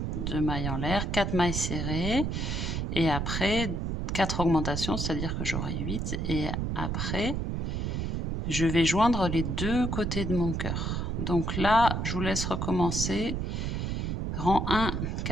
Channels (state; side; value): noise; right; rumble, 1 dB below the sound